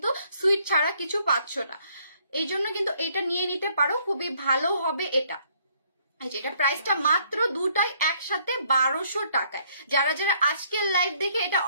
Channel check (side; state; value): both; inverted; correlation -0.65